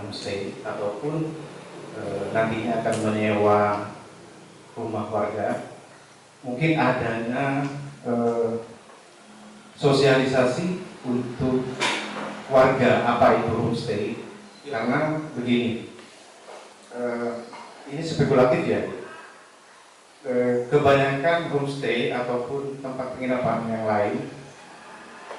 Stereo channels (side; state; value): both; identical; correlation 1.00